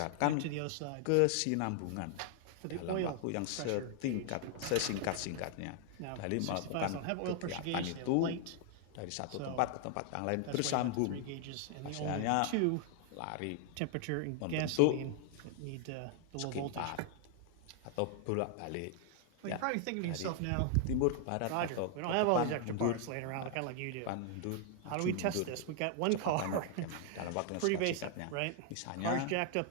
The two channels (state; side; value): different; both; correlation 0.00